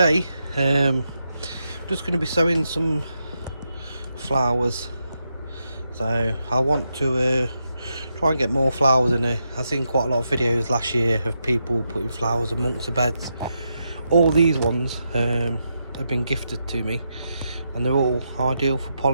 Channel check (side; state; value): both; inverted; correlation -0.84